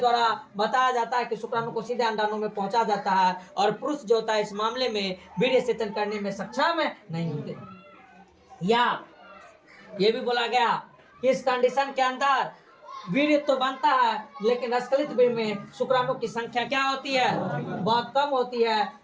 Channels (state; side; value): identical; both; correlation 1.00